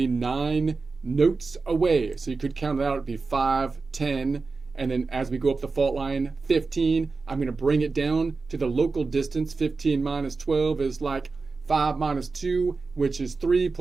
9 notes away. So you could count it out. It'd be 5, 10, and then as we go up the fault line, 15. I'm going to bring it down to the local distance. 15 minus 12 is like 5 minus 2, which is 3,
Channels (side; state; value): left; quieter; 4.1 dB